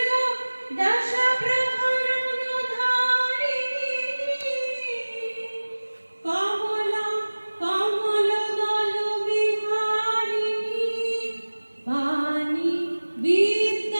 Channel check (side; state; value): both; inverted; correlation -1.00